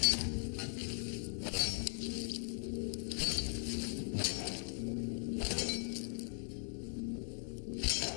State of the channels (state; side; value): silent; right; 51 dB below the other